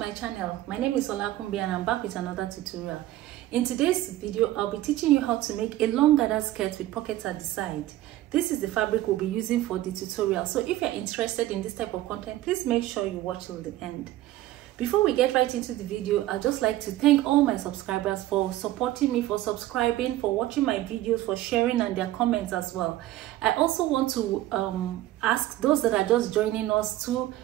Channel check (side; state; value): left; quieter; 15.1 dB